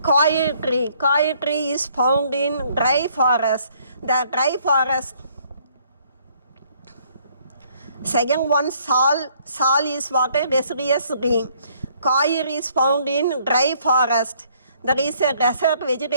Coir tree is found in dry forest. The dry forest. Second one sal is what a deciduous tree. Coir is found in dry forest. That is a desert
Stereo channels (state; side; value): inverted; both; correlation -0.64